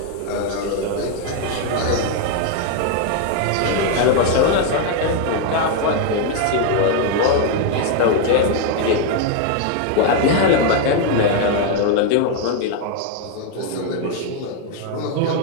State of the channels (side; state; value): both; different; correlation 0.01